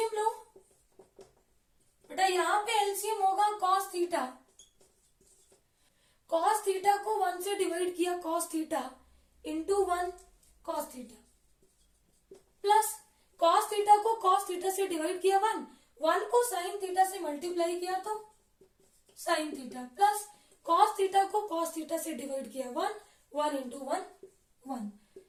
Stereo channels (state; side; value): identical; both; correlation 1.00